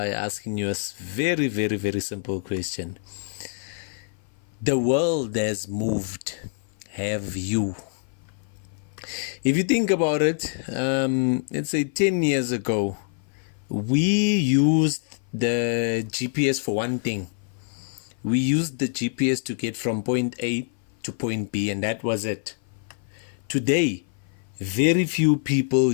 asking you a very simple question. The world has moved. Have you? If you think about it, let's say 10 years ago, we used the GPS for one thing. We used the GPS to get from point A to point B, and that was it. Today, very few people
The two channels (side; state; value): right; silent; 56 dB below the other